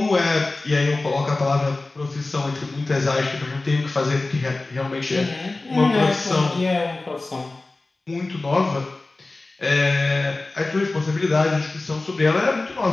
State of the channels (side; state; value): right; quieter; 3.2 dB